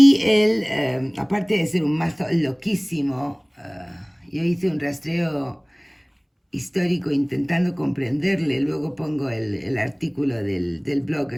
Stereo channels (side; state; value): both; identical; correlation 1.00